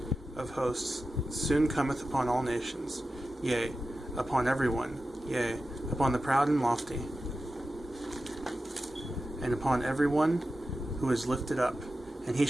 of hosts soon cometh upon all nations, yea, upon every one, yea, upon the proud and lofty, and upon every one who is lifted up, and he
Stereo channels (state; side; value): normal; both; correlation 0.92